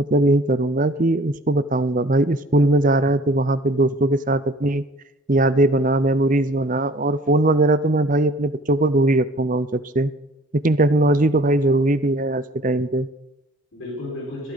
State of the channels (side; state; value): both; normal; correlation 0.51